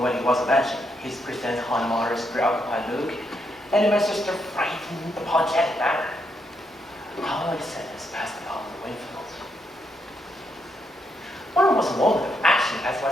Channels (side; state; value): both; normal; correlation 0.79